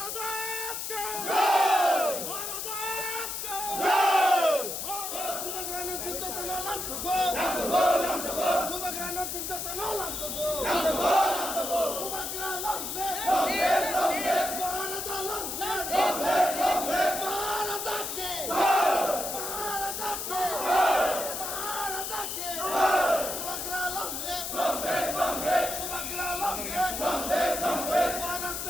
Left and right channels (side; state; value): left; noise; hiss, 4 dB below the sound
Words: ke jai! Maharaja ke jai! Kubagrana Sintatana Lam sabha! Lam sabha! Lam sabha! Kubagrana Sintatana Lam sabha! Lam sabha! Lam sabha! Kubagrana Lam live! Long live! Long live! Maharaja long live! Long live! Long live! Maharaja ke jai! Maharaja ke jai! Maharaja ke jai! Kubagrana long live! Long live! Long live! Kubagrana long live! Long live! Long live!